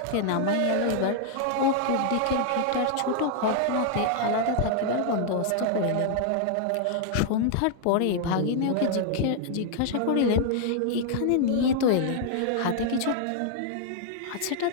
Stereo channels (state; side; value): different; both; correlation 0.00